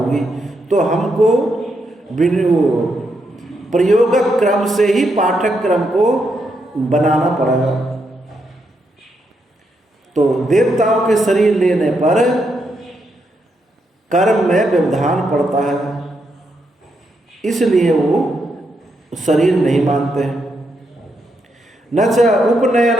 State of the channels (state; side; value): normal; both; correlation 0.80